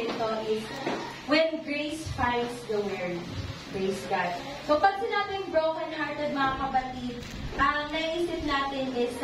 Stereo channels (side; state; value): both; identical; correlation 1.00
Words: ito is When Grace Finds the Word. Praise God. So, pag sinabing broken-hearted mga kapatid, ang naisip natin is